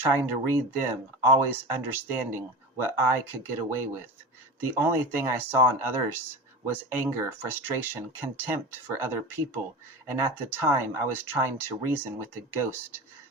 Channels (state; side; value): normal; both; correlation 0.30